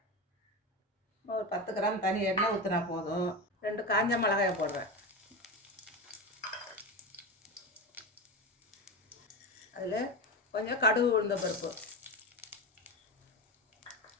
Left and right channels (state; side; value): normal; both; correlation 0.21